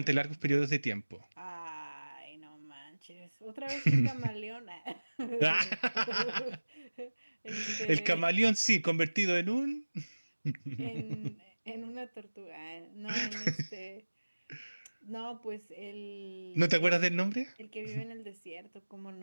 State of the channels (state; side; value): inverted; both; correlation -1.00